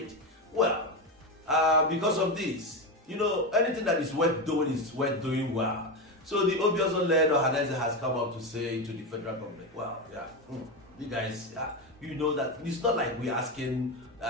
Well, because of this, anything that is worth doing is worth doing well. So the Obiozo-led organizer has come up to say to the federal government, well, you guys, you know that it's not like we're asking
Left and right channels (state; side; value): normal; both; correlation 0.15